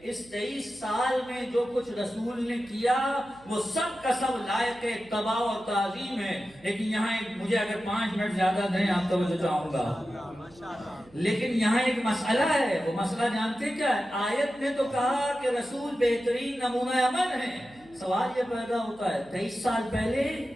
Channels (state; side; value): noise; right; hum, 26 dB below the sound